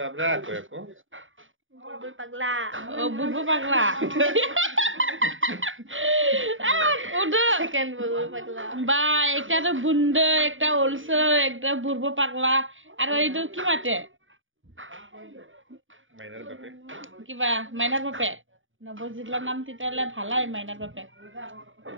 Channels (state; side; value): late; left; 0.57 ms